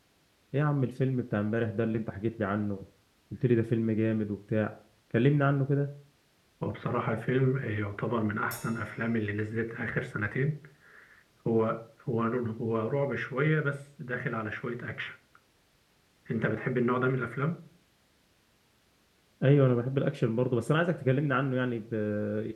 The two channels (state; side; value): identical; both; correlation 1.00